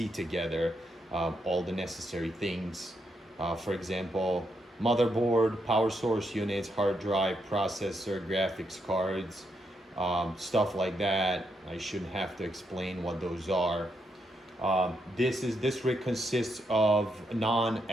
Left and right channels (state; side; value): normal; both; correlation 0.80